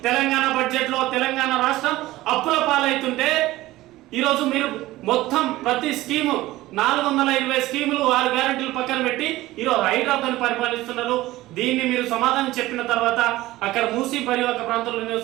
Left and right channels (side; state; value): left; quieter; 17.2 dB